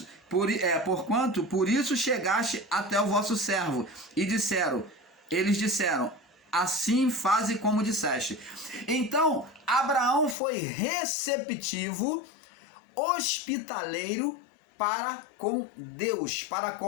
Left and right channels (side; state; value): right; drops out; at 10.4 s